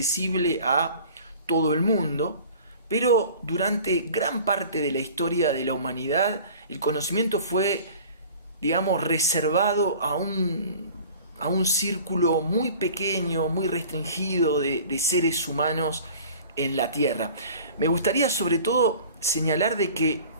a todo el mundo, pero durante gran parte de la historia de la humanidad el conocimiento fue, digamos, reservado a un círculo muy pequeño, muy restringido de seres humanos en la Tierra. Me gustaría sobre todo señalar de que,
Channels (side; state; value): both; inverted; correlation -0.44